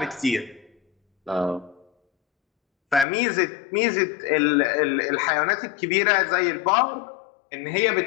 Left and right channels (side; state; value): right; drops out; at 3.1 s